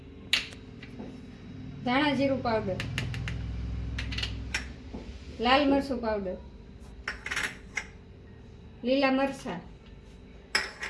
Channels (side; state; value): both; identical; correlation 1.00